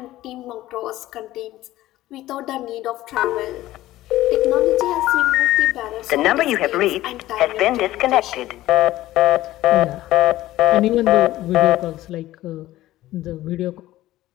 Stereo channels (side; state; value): right; quieter; 15.6 dB